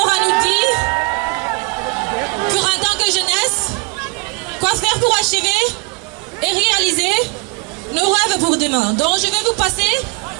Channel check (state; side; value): quieter; left; 28.5 dB